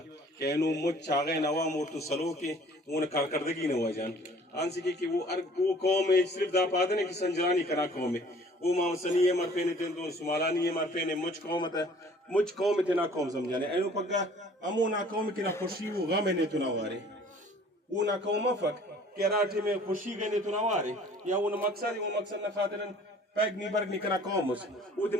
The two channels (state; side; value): normal; both; correlation 0.52